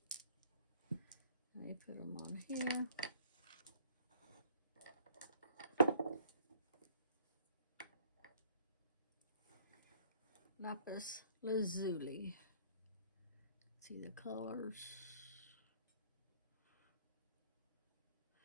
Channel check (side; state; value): both; inverted; correlation -0.58